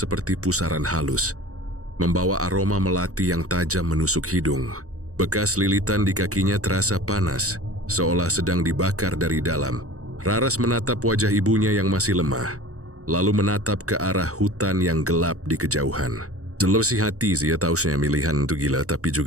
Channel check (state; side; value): late; left; 0.65 ms